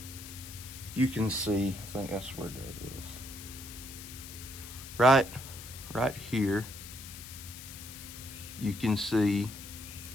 You can see, I think that's where that is. Right here, you can see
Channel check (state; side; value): noise; left; hiss, 12 dB below the sound